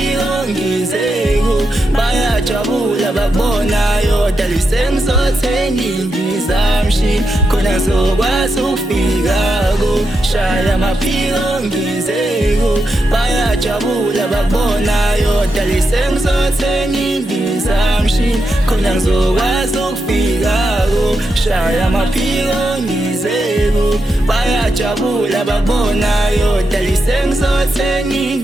ngizeko bayajabula bakubonayo dali sengizothenga indizamshini khona ngizokwazi ukufika shaya amaphiko ngizeko bayajabula bakubonayo dali sengizothenga indizamshini khona ngizokwazi ukufika shaya amaphiko ngizeko bayajabula bakubonayo dali sengizothenga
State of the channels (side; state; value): both; normal; correlation 0.85